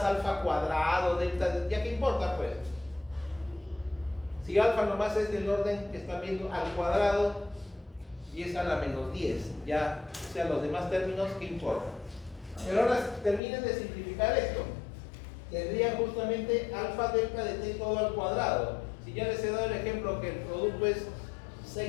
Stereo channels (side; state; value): right; drops out; at 13.4 s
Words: alfa cuadrado, delta de... ¿Ya qué importa, pues? Si alfa nomás es del orden que están viendo al cuadrado y es a la menos 10, ya, o sea, los demás términos, ¿qué importa? Pero ahora terminen de simplificar esto. Tendría justamente alfa delta de t todo al cuadrado. Si ya les he dado el ejemplo que el producto es